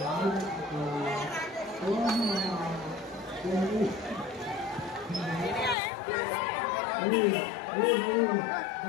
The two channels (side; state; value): right; drops out; at 5.8 s